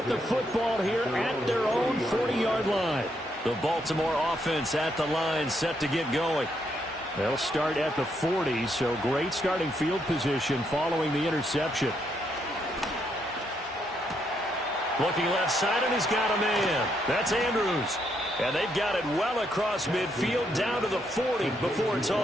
the football here at their own 40-yard line. The Baltimore offense at the line, set to get going. They'll start at the 40, so great starting field position following the interception. Looking left side, and he's got a man. That's Andrews. And they've got it well across midfield down to the 40 before it's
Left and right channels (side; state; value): both; normal; correlation 0.76